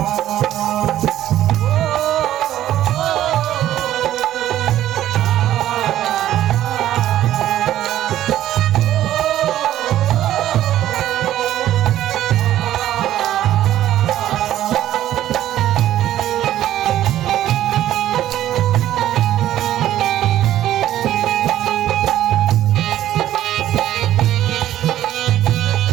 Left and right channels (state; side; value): quieter; left; 12.8 dB